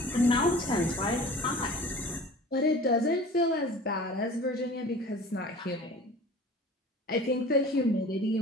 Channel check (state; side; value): normal; both; correlation 0.43